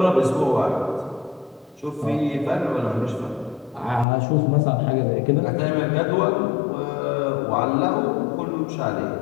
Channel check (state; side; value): drops out; right; at 4.0 s